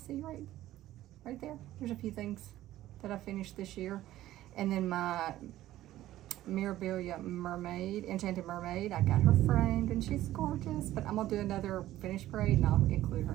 right there. There's a few things that I finished this year. And then my Mirabilia mermaid, enchanted mermaid, I got her framed and she's gorgeous, but I'm gonna do another finish parade and I'll include her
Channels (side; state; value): left; quieter; 14.4 dB